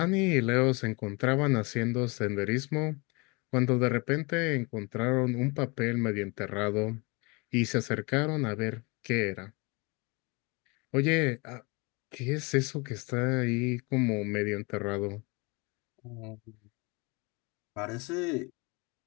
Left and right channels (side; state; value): right; quieter; 28.3 dB